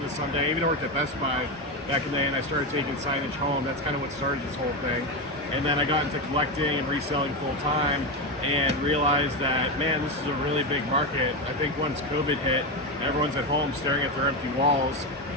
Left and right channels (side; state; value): both; normal; correlation 0.14